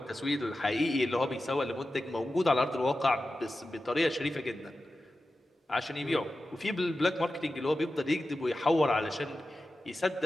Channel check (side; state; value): both; normal; correlation 0.93